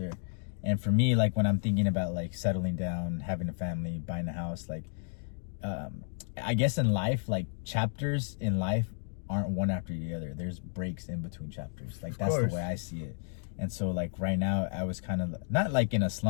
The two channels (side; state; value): right; silent; digital silence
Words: And for me, like when I'm thinking about like settling down, having a family, buying a house, like I guess in life, like chapters in life aren't one after the other. There's breaks in between chapters. Like that's the way I see it. And so like right now I was kind of not like in a